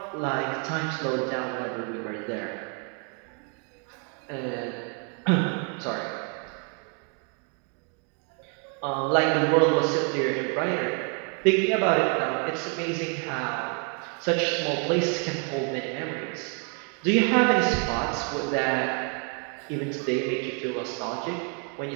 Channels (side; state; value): left; quieter; 39.1 dB